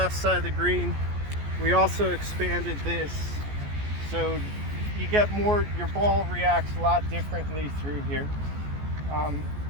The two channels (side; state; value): left; late; 14 ms